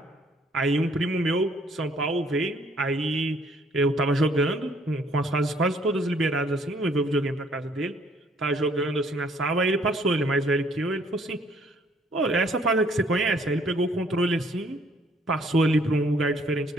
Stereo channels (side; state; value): both; normal; correlation 0.63